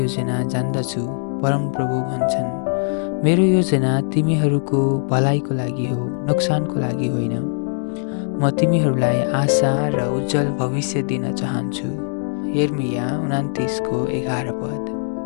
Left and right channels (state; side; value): silent; right; digital silence